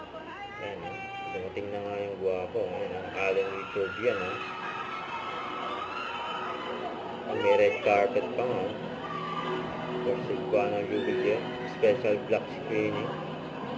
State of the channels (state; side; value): identical; both; correlation 1.00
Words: Ayan, dumating na nga yung guwapo. Ayan, ang Alden Richard yan, ha. May red carpet pa nga, for Cebuano Luwilier. Special black screening.